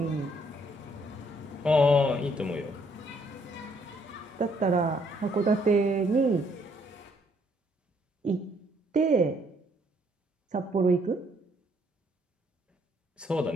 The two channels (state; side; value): normal; both; correlation 0.68